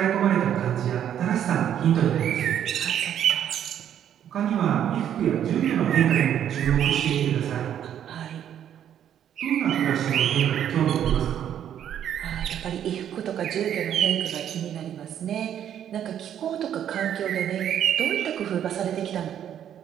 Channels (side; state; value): left; quieter; 9.9 dB